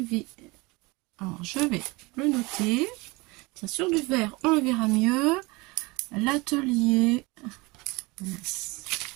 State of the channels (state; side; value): quieter; left; 24.7 dB